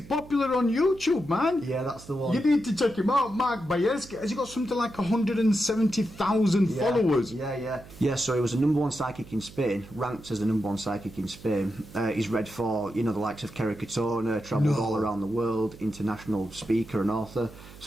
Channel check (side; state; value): right; noise; hum, 19 dB below the sound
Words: on YouTube, man. Yeah, that's the one. You need to check him out. Mark Bajerski, has he got something like 170,000 followers? Yeah, so he was the #1 psychic in Spain, ranked as the #1 psychic in Spain. He's read for, you know, the likes of Kerry Katona, travelled all around the world, international speaker and author.